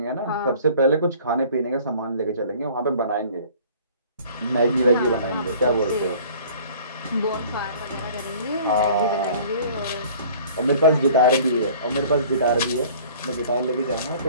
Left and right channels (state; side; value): inverted; both; correlation -0.50